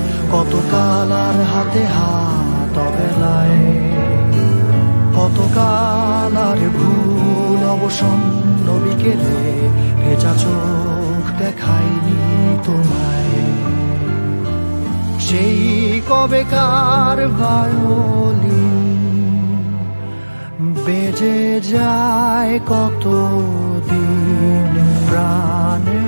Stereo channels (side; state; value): both; inverted; correlation -1.00